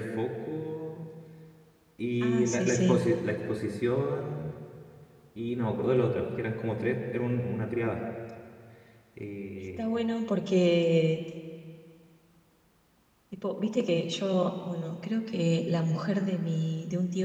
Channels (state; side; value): identical; both; correlation 1.00